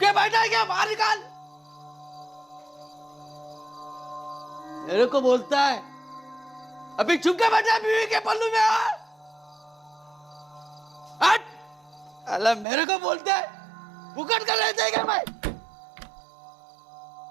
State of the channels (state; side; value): drops out; left; at 12.7 s